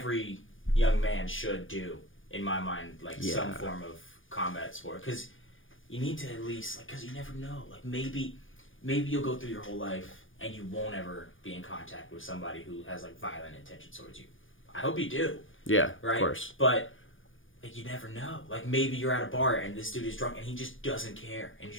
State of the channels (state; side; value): late; right; 0.58 ms